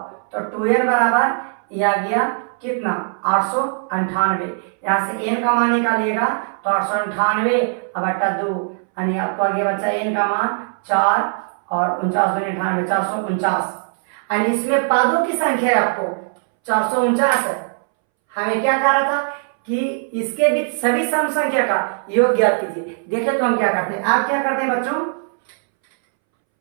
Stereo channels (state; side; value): silent; left; 64 dB below the other